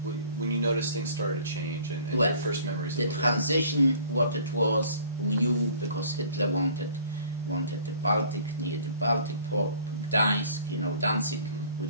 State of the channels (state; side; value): inverted; both; correlation -0.52